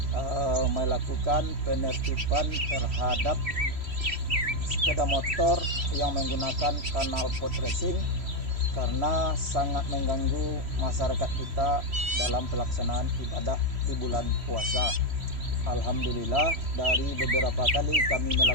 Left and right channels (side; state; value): left; late; 3.0 ms